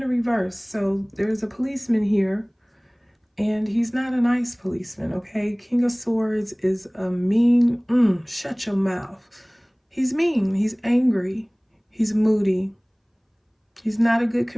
reverse. So there's a policeman here. And he's not a nice policeman, okay? King of Swords is a mean, shut your mouth. He's mean, he's angry, he's moody. He's not a good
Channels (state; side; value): identical; both; correlation 1.00